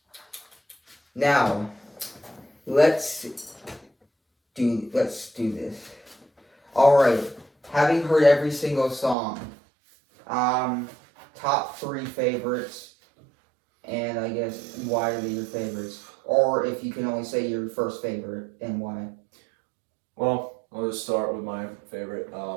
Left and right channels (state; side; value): drops out; left; at 9.2 s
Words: Now, let's do this. All right. Having heard every single song, top 3 favorites, and I guess why are they your favorites? Or if you can only say your first favorite and why. Well, I'll just start with my favorite.